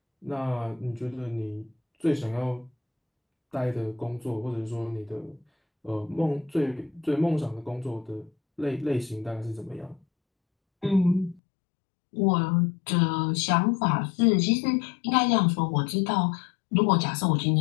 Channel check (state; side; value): drops out; right; at 11.4 s